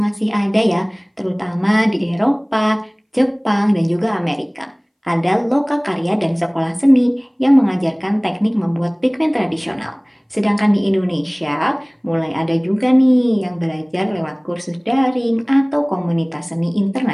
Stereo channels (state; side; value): identical; both; correlation 1.00